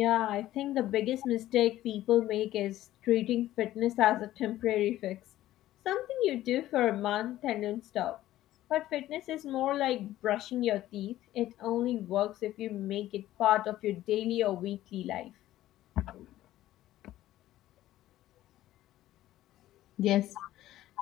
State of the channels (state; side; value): quieter; right; 14.4 dB